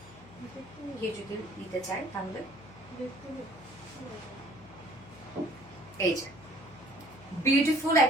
কেউ যদি নিতে চায় তাহলে এই যে বিউটিফুল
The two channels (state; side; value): noise; left; hum, 20 dB below the sound